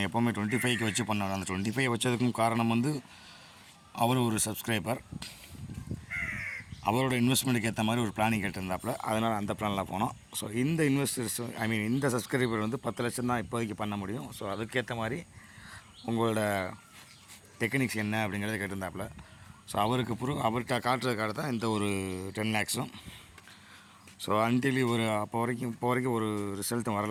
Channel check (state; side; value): identical; both; correlation 1.00